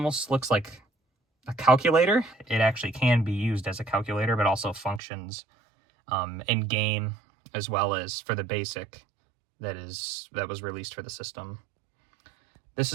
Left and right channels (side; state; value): left; drops out; at 5.0 s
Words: looks like a calculator. It actually can be used as a calculator, but also functions in game as well as for the basic that was released for the system. This